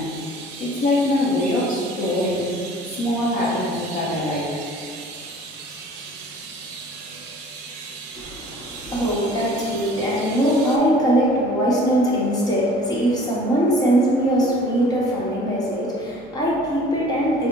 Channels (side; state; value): both; normal; correlation 0.49